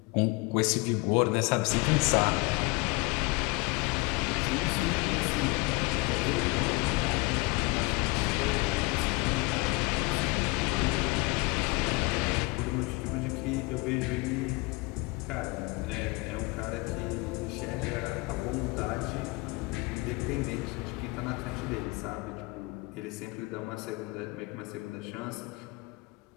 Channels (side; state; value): right; quieter; 26.2 dB